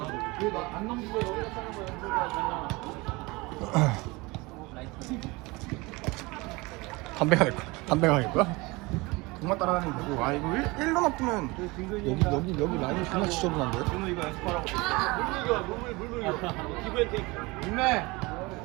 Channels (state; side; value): quieter; left; 23.9 dB